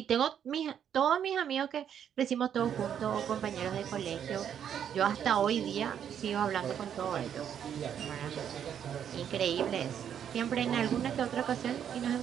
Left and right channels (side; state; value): left; quieter; 8.9 dB